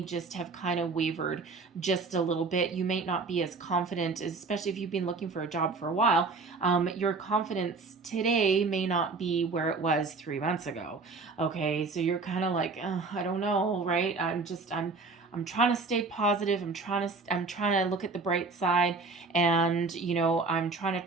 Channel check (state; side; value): quieter; left; 4.0 dB